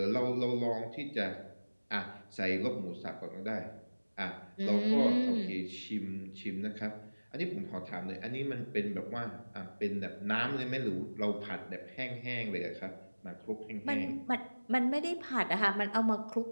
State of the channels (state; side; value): inverted; both; correlation -1.00